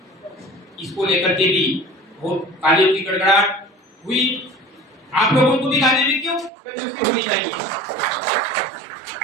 इसको लेकर के भी बहुत तालियों की गड़गड़ाहट हुई। आप लोगों को भी गाने में क्यों कंजूसी होनी चाहिए।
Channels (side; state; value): left; drops out; at 6.5 s